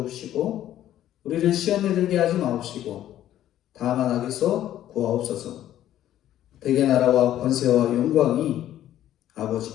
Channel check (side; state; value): right; quieter; 12.3 dB